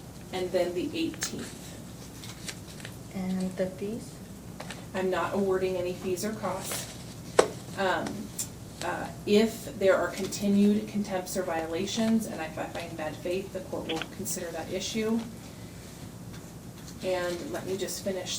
and then the 18th. And the fees? I'm not awarding any fees or costs. If there are continued contempts or violations, and if I find bad faith, the court will consider that issue. And let me just finish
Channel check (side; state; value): both; identical; correlation 1.00